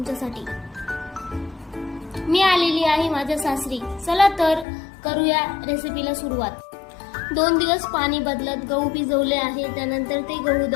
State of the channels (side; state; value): right; drops out; at 4.7 s